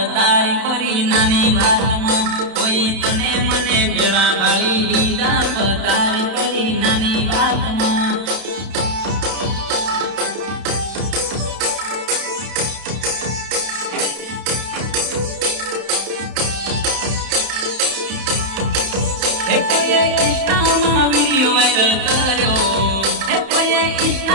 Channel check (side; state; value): left; late; 31 ms